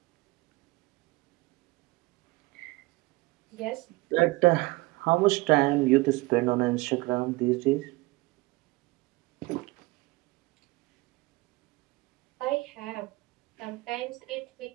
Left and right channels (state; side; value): quieter; left; 22.4 dB